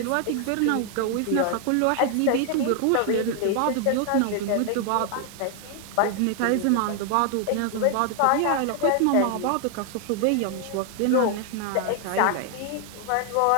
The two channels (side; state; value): both; different; correlation 0.00